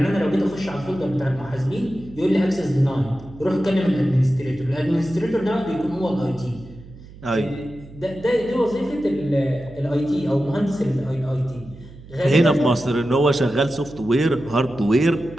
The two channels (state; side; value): noise; right; hum, 19 dB below the sound